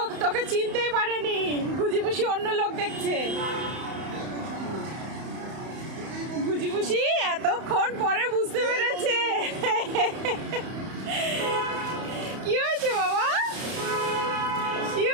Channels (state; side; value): late; left; 31 ms